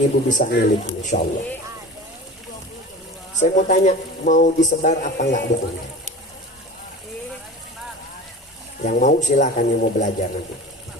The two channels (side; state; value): both; normal; correlation 0.36